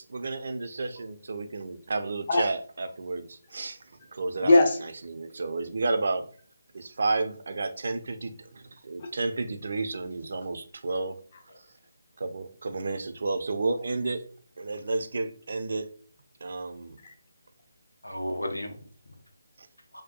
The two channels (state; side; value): inverted; both; correlation -0.90